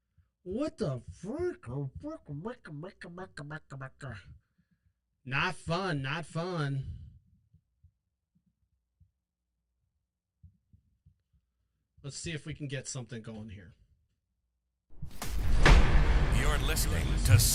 What the fuck? Not fun, not fun. Let's see if we can get something going here. You're listening to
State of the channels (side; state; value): both; identical; correlation 1.00